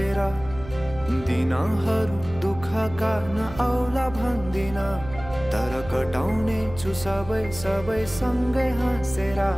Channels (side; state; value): right; noise; hum, 14 dB below the sound